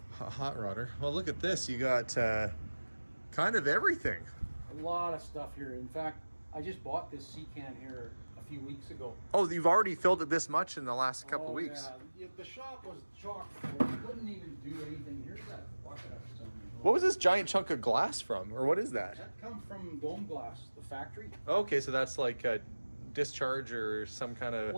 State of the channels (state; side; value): inverted; both; correlation -1.00